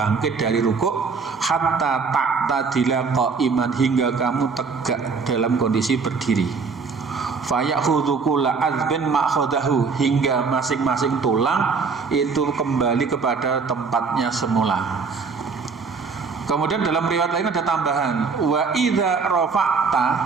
dari rukuk, hatta ta'tadila qa'iman, hingga kamu tegak dalam kondisi berdiri. Fayakhudhu kulla azbin ma'khadahu, hingga masing-masing tulang itu kembali kepada tempatnya semula. Kemudian dalam riwayat lain ada tambahan, wa idza rafa'ta,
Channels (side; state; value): left; quieter; 5.0 dB